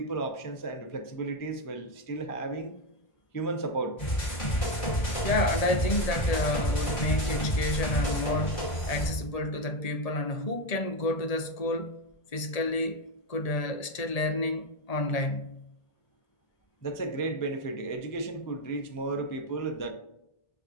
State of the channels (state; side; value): late; right; 1.8 ms